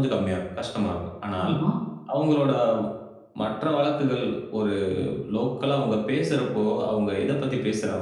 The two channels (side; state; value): both; identical; correlation 1.00